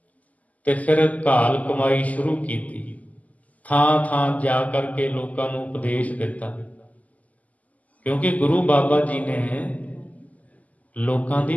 ਤੇ ਫਿਰ ਘਾਲ ਕਮਾਈ ਸ਼ੁਰੂ ਕੀਤੀ। ਥਾਂ ਥਾਂ ਜਾ ਕਰਕੇ ਲੋਕਾਂ ਨੂੰ ਉਪਦੇਸ਼ ਦਿੱਤਾ, ਕਿਉਂਕਿ ਗੁਰੂ ਬਾਬਾ ਜੀ ਨੇ ਲੋਕਾਂ ਦੀ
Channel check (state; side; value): late; right; 0.075 ms